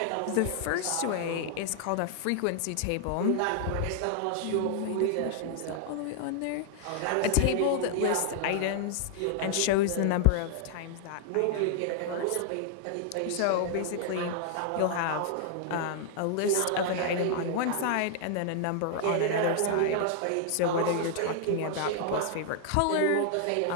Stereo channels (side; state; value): both; different; correlation 0.00